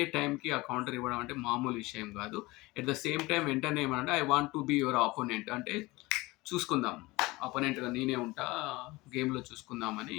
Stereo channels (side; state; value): right; quieter; 21.5 dB